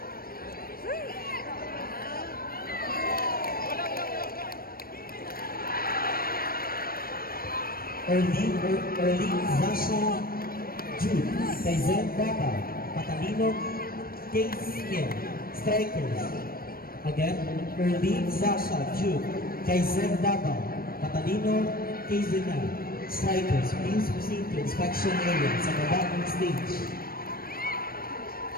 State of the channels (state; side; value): late; right; 0.43 ms